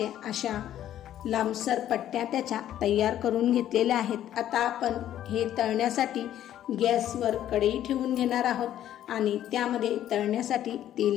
अशा लांबसर पट्ट्या त्याच्या तयार करून घेतलेल्या आहेत। आता आपण हे तळण्यासाठी गॅसवर कढई ठेवून घेणार आहोत आणि त्यामध्ये तळण्यासाठी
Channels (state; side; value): quieter; right; 11.7 dB